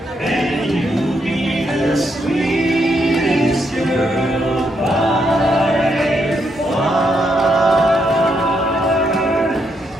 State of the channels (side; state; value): both; normal; correlation 0.78